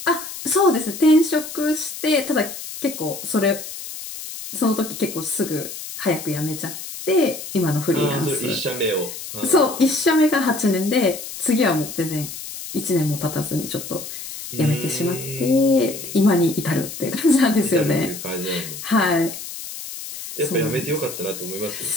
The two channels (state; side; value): noise; left; hiss, 10 dB below the sound